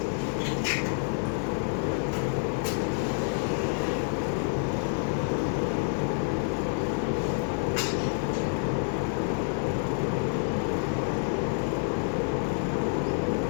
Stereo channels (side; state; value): right; silent; 57 dB below the other